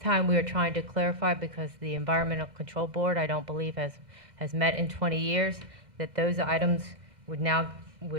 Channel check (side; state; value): left; late; 1.6 ms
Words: time we are trying to clarify, because the Environmental Control Board, I don't believe, has met in 20 years, that those items which